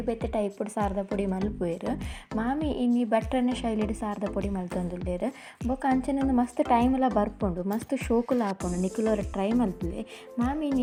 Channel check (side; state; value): both; identical; correlation 1.00